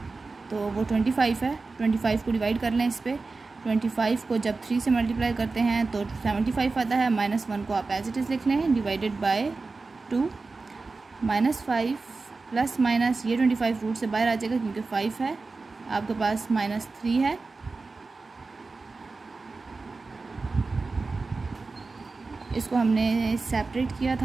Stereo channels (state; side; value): quieter; left; 3.9 dB